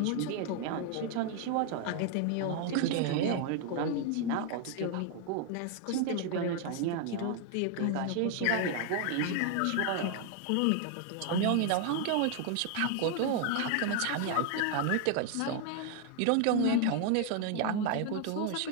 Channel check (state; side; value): different; both; correlation 0.00